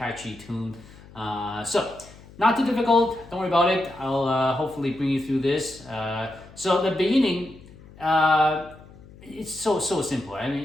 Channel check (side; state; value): left; noise; hum, 21 dB below the sound